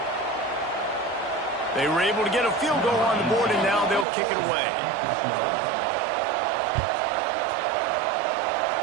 They were able to get a field goal on the board, and now they'll kick it away.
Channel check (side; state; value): left; drops out; at 4.0 s